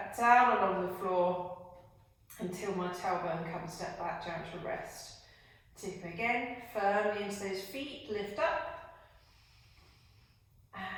down along the floor until my tailbone comes back down to rest. Tip again, firmly into those feet, lift up.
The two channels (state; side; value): identical; both; correlation 1.00